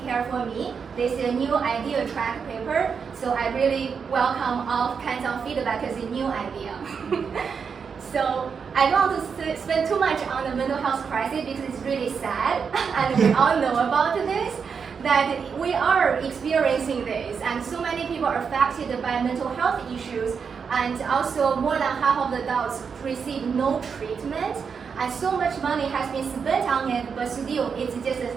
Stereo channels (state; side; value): quieter; left; 6.1 dB